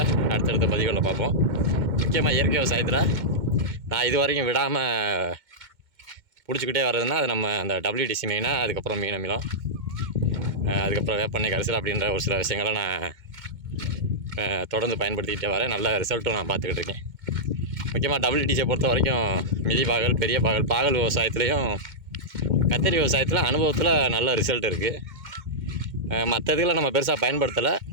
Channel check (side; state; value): left; late; 2.1 ms